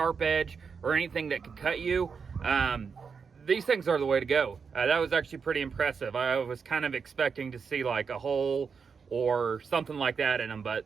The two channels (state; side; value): quieter; left; 5.8 dB